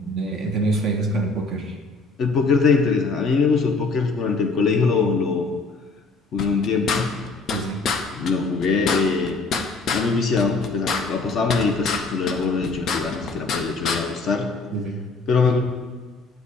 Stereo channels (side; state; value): right; quieter; 3.6 dB